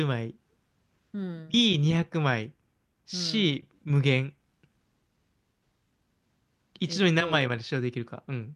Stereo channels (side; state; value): both; identical; correlation 1.00